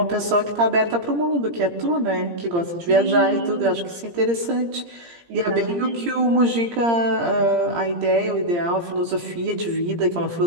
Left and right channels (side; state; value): left; late; 17 ms